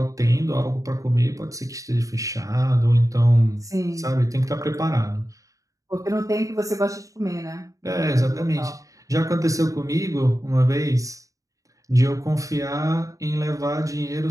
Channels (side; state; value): left; late; 0.16 ms